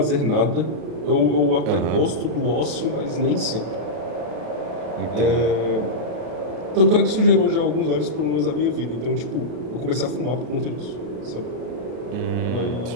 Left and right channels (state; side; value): late; left; 33 ms